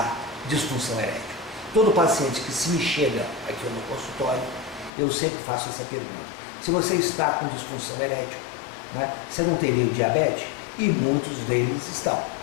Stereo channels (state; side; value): drops out; right; at 4.9 s